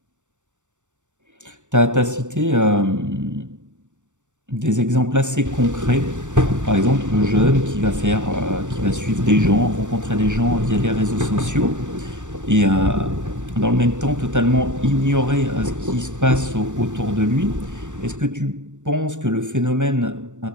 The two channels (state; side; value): late; left; 0.85 ms